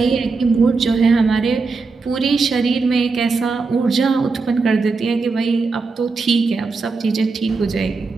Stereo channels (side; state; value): left; quieter; 4.2 dB